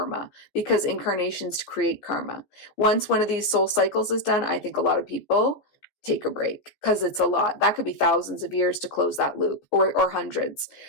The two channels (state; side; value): late; right; 14 ms